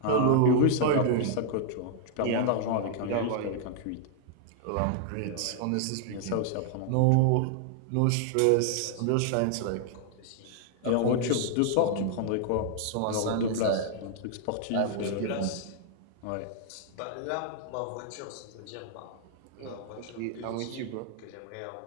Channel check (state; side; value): different; both; correlation -0.01